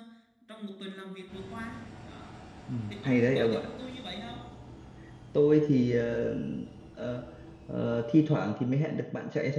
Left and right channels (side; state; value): both; identical; correlation 1.00